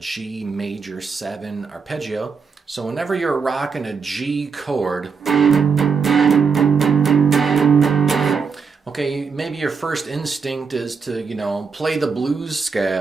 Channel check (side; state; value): left; quieter; 5.5 dB